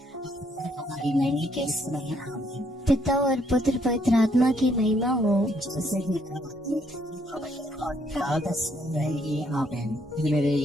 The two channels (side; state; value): both; normal; correlation 0.70